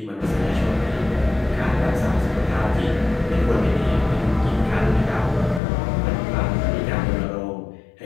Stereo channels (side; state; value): right; drops out; at 5.6 s